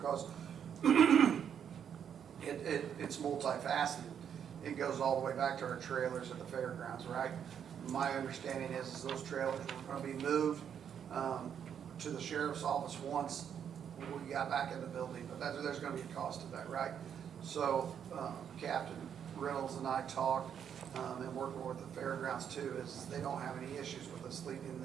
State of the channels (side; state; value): left; quieter; 8.3 dB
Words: it's multifaceted. It goes all the way back to our trailers at the fairgrounds, right? My understanding is those trailers were gonna be moved to the sheriff's office once we got back in the building, but there's gonna be a cost to that, right? So Captain Reynolds and I talked, and working with the fairgrounds too, is they don't have any issues with us leaving